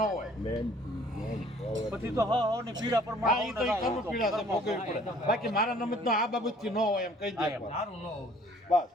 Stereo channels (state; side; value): normal; both; correlation 0.56